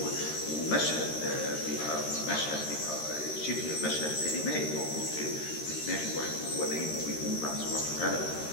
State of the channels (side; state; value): right; late; 13 ms